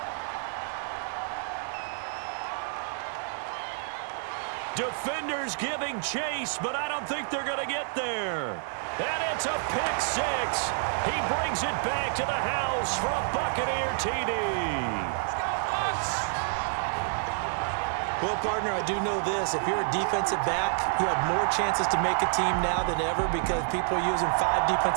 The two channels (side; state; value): left; silent; digital silence